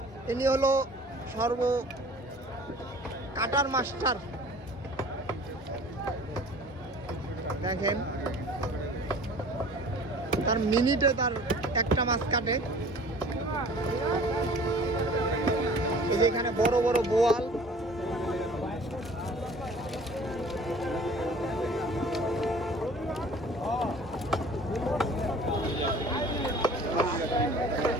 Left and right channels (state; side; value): normal; both; correlation 0.47